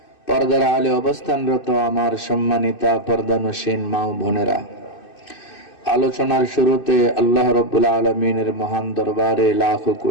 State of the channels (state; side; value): late; right; 2.6 ms